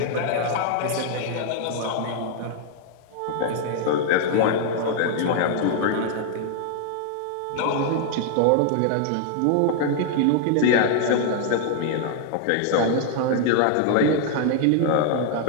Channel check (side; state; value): both; different; correlation 0.00